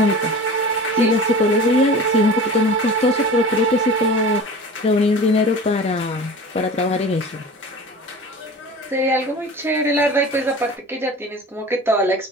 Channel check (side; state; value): both; normal; correlation 0.37